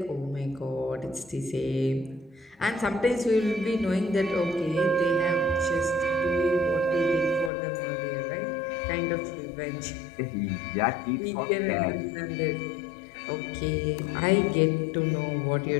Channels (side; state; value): right; drops out; at 7.5 s